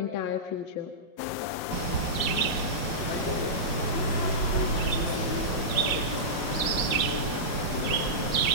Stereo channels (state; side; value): late; right; 5.5 ms